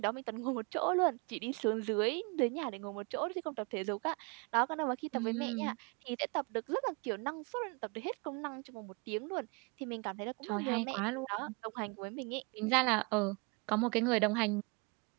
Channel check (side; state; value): left; quieter; 30.9 dB